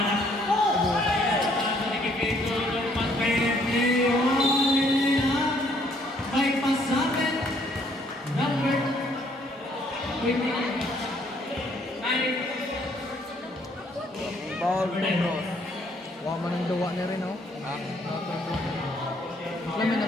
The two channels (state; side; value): normal; both; correlation 0.65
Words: Pasa ni Kipito. Mas Leo. May pasapit. Number 20. Paul Pedros. Wala man ang duwa niya rin, oh. Alam mo,